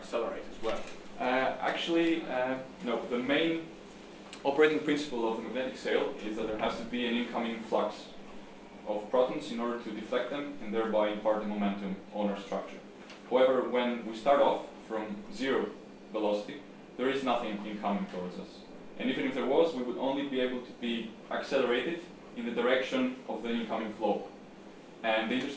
as well? No. The main operating principle of the magnetic sail is that there has to be an incoming flux of protons in order to deflect them and thereby impart the momentum on our structure. However, when we start off from zero velocity, there is nothing incoming towards us. And even if there was, we would only be able to be accelerated in the direction of the incoming flow. And the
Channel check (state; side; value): identical; both; correlation 1.00